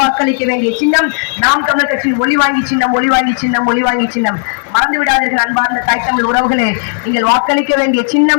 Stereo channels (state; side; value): silent; right; digital silence